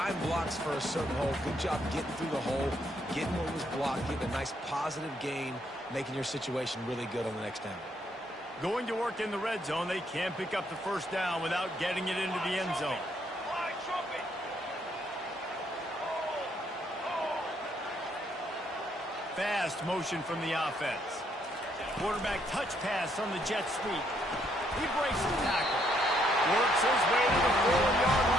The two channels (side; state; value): both; normal; correlation 0.71